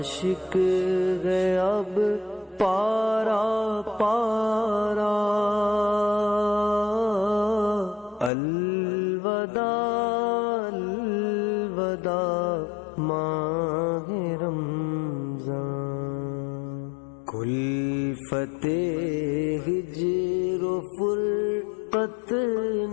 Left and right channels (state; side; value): drops out; right; at 8.3 s